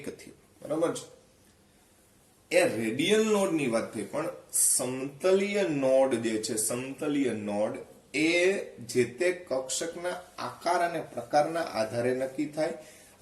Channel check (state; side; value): identical; both; correlation 1.00